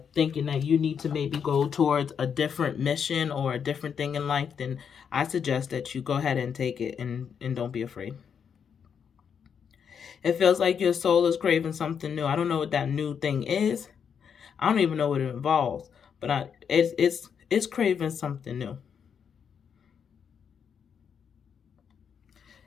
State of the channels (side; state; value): right; quieter; 7.2 dB